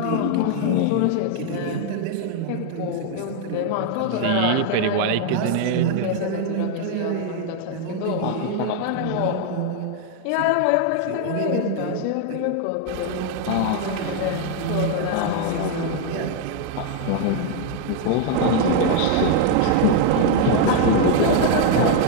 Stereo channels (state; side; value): different; both; correlation 0.00